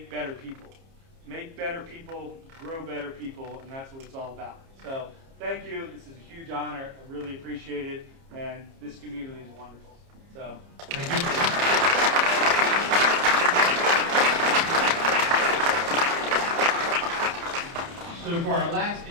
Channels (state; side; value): late; left; 30 ms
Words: better people. Make better people, grow better people, and that's what it's all about. So thank you. This is a huge honor. I really appreciate it, and this community is wonderful. So Thank you. So for our last